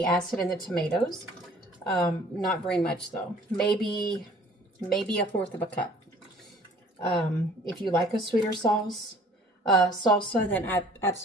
acid in the tomatoes. Not very much though. Maybe a fourth of a cup. If you like a sweeter salsa, then I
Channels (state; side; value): normal; both; correlation 0.54